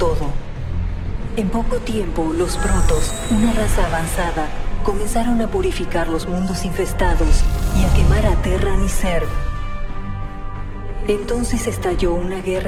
En poco tiempo, los Protoss, una raza avanzada, comenzaron a purificar los mundos infestados y a quemar a Terran y Zerg. Entonces estalló una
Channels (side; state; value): both; identical; correlation 1.00